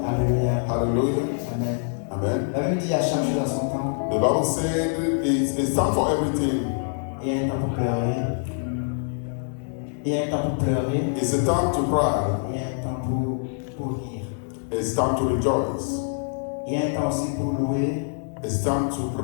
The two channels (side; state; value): right; silent; 62 dB below the other